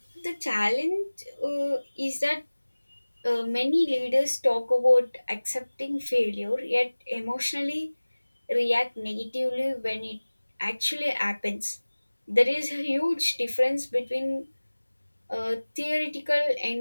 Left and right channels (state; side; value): inverted; both; correlation -1.00